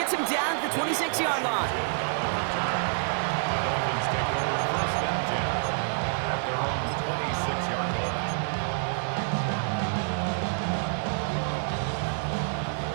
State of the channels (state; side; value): silent; left; digital silence